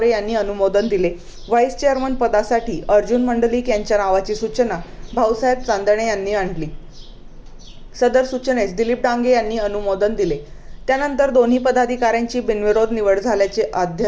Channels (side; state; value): both; identical; correlation 1.00